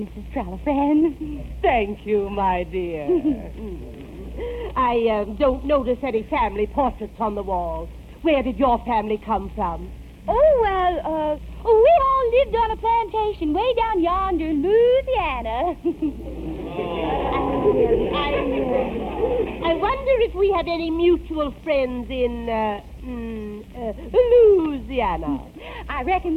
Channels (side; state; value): both; identical; correlation 1.00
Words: Trallifran. Thank you, my dear. I don't notice any family portraits on the wall. Where did your family come from? Oh, well, we all lived on a plantation way down yonder in Louisiana. I wonder if we have any mutual friends in, Louisiana. I reckon